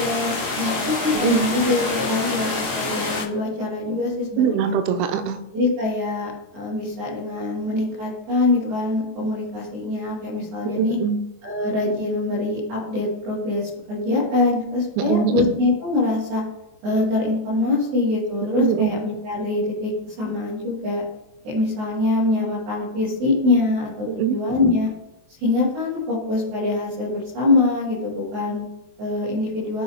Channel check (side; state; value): left; late; 23 ms